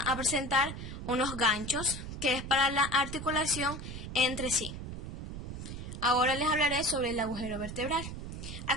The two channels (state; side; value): noise; right; rumble, 8 dB below the sound